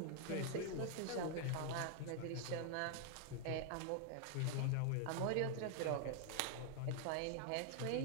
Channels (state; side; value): different; both; correlation 0.00